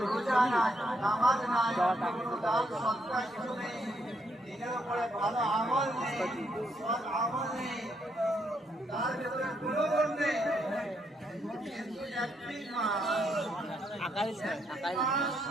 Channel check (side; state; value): both; normal; correlation 0.76